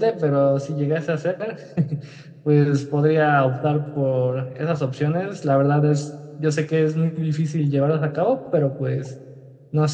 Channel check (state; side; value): identical; both; correlation 1.00